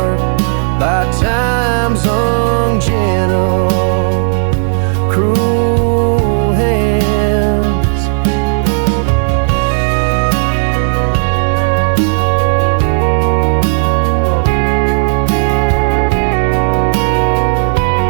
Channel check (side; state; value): left; silent; digital silence